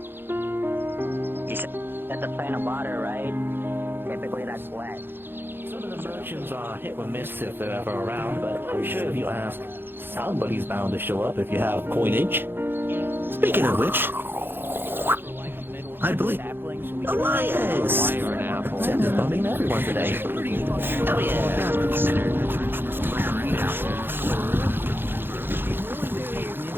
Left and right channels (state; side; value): late; left; 0.10 ms